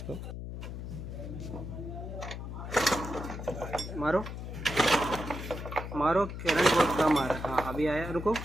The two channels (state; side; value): noise; left; hum, 7 dB below the sound